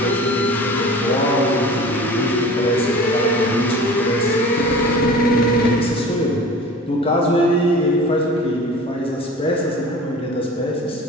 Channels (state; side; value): normal; both; correlation 0.40